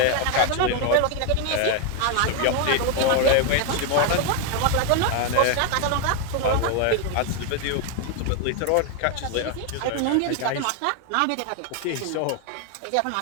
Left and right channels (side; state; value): both; different; correlation 0.01